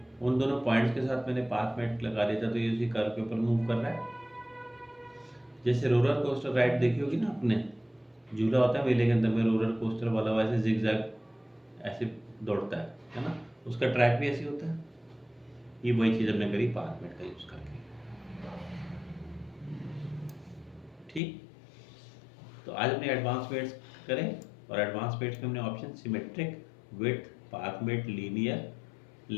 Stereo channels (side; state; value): right; drops out; at 21.2 s